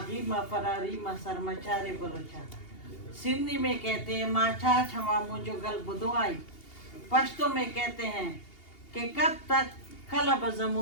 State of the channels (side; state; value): right; late; 2.8 ms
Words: माँ फरारी माँ सरमचारे बलोचा। सिंधी में कहते हैं माछा छमा मुझो गल बुदवाई। पश्तो में कहते हैं कि कब तक कलब